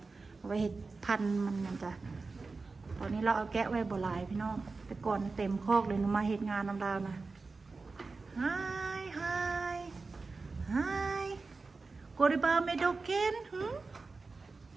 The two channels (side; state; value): left; quieter; 4.0 dB